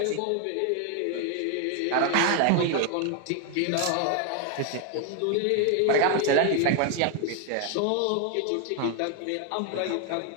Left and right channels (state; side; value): different; both; correlation 0.01